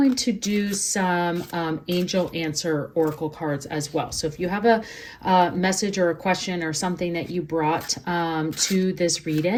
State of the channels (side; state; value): both; identical; correlation 1.00